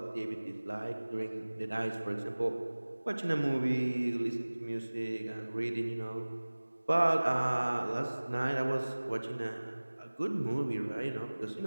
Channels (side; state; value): both; inverted; correlation -1.00